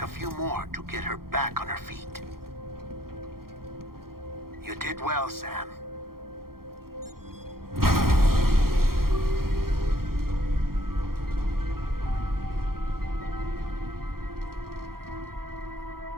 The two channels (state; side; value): late; left; 0.93 ms